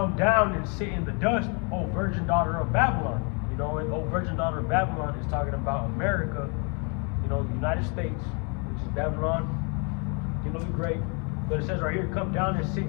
down and sit in the dust, O virgin daughter of Babylon." And O virgin daughter of Babylon is talking about America, the United States, which is Babylon, the great. But it says right here, "Come down and sit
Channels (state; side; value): quieter; right; 35.4 dB